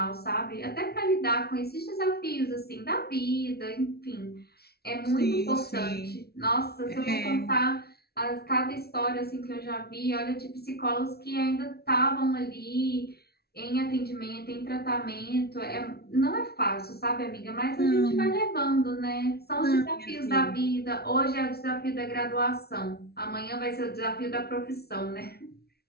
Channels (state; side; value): late; right; 0.45 ms